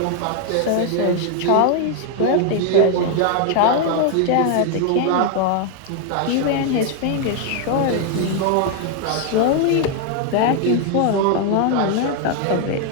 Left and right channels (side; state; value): both; different; correlation 0.00